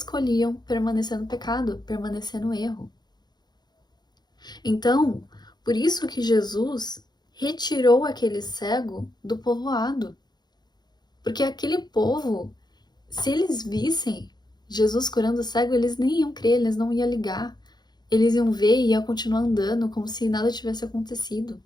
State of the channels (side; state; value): right; late; 0.20 ms